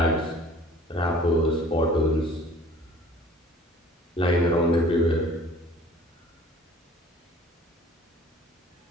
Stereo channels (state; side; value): normal; both; correlation 0.49